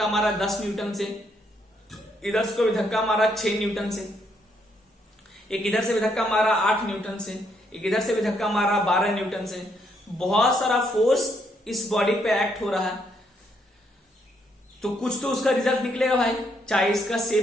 मारा 10 न्यूटन से, इधर से कोई धक्का मारा 6 न्यूटन से, एक इधर से भी धक्का मारा 8 न्यूटन से, एक इधर से भी धक्का मारा 12 न्यूटन से। बहुत सारा फोर्स इस बॉडी पे एक्ट हो रहा है, तो कुछ तो उसका रिजल्ट निकलेगा भाई, चाहे इसका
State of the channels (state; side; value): normal; both; correlation 0.74